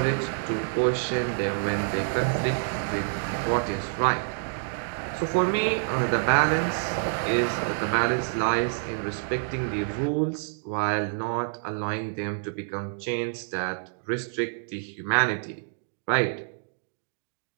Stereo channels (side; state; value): left; silent; digital silence